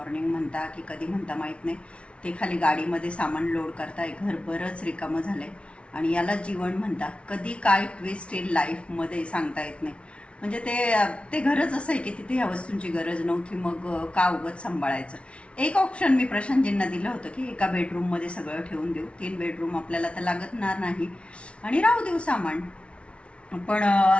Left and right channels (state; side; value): late; right; 0.060 ms